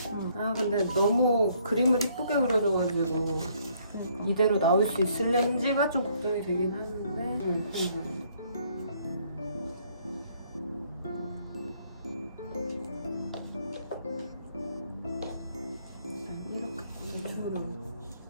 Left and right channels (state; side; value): inverted; both; correlation -0.66